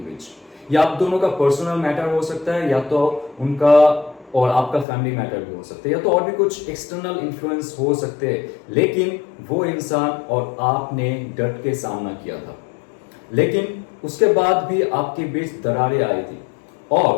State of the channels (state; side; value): drops out; right; at 4.9 s